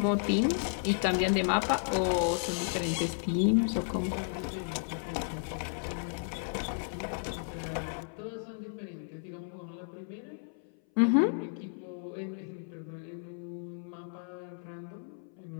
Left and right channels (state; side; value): silent; right; 56 dB below the other